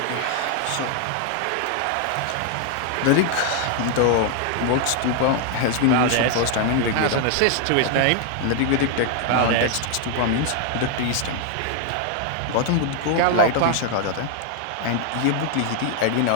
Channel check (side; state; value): both; different; correlation 0.00